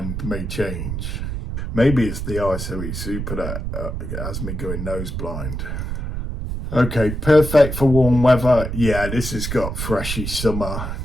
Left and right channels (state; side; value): noise; right; rumble, 5 dB below the sound